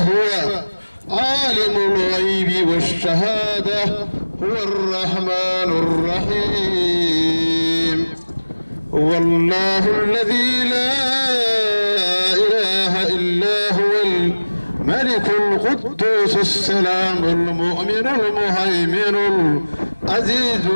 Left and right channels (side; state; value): both; inverted; correlation -1.00